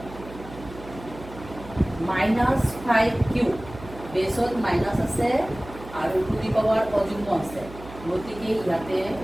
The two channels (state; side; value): noise; right; hum, 16 dB below the sound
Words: -5 কিউব বেসত মাইনাস আছে আৰু টু দি পাৱাৰ অযুগ্ম আছে গতিকে ইয়াতে